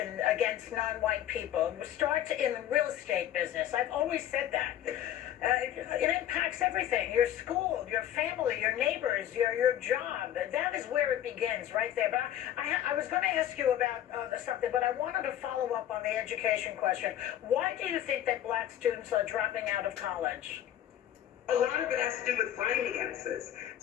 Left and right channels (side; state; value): right; quieter; 11.5 dB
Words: against non-white people. It starts in the real estate business. I've always said that. It impacts everything: your school, your family, your neighbors, your job. That is where it begins, right there. But I was going to ask you about something, but I wanted to follow up on the education question. Why do you think that Black students are dropping out of college? A lot of it has to do with finances.